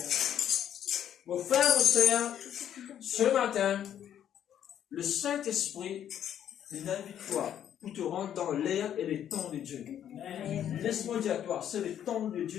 Mon frère, mon sœur, ce matin, le Saint-Esprit invite toi pour te rendre dans l'air et les temps de Dieu. Laisse-moi dire à toi, c'est le temps de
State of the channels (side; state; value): right; quieter; 10.1 dB